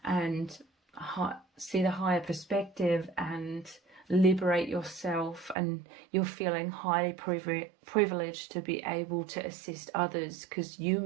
and see the higher perspective and liberate yourself. And you're feeling highly privileged to be able to assist others, because you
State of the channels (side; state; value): left; drops out; at 5.6 s